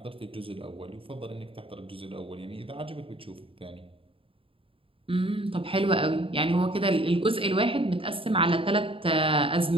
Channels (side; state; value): left; late; 0.26 ms